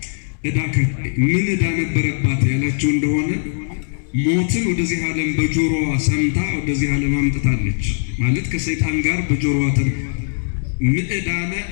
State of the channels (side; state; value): right; silent; digital silence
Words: ዕዳ ከፋይ። ምን ዕዳ ነበረባት ያላችሁ እንደሆነ ሞትን ወደዚህ ዓለም በጆሮዋ ሰምታ ወደዚህ ዓለም አምጥታለች ማለት ከሰይጣን ጋር በጆሮዋ ምዕዳነ